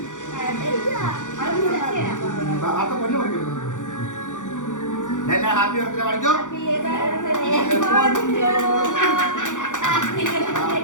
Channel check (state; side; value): late; right; 0.86 ms